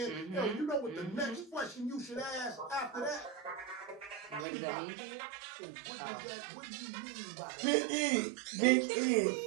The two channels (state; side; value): drops out; left; at 4.5 s